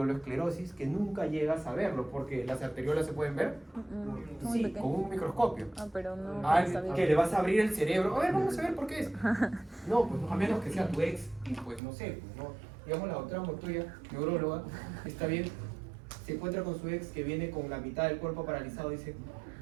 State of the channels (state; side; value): drops out; left; at 11.8 s